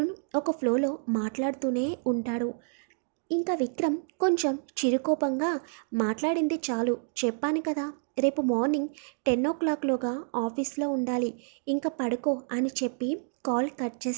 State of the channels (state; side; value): silent; left; digital silence